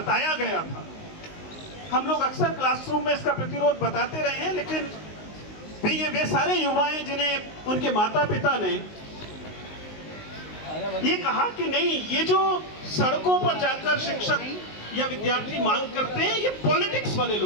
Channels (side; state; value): right; late; 19 ms